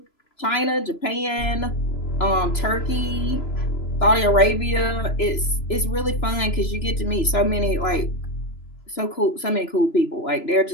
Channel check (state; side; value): late; right; 3.0 ms